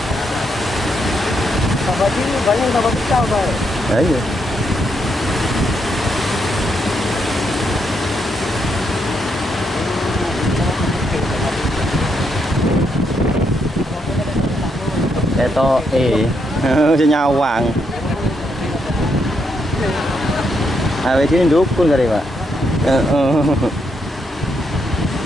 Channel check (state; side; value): normal; both; correlation 0.78